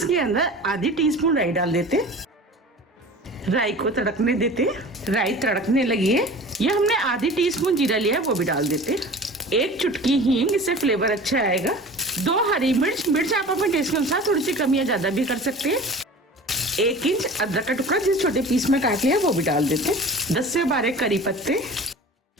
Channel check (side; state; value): both; normal; correlation 0.39